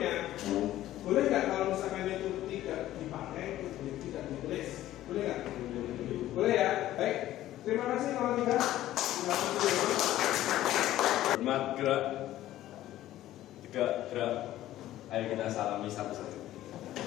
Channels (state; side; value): quieter; right; 14.0 dB